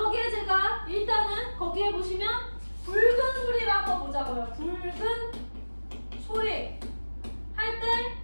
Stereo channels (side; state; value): both; inverted; correlation -1.00